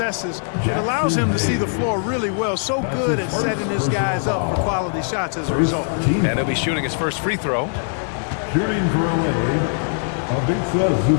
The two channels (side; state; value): right; silent; 65 dB below the other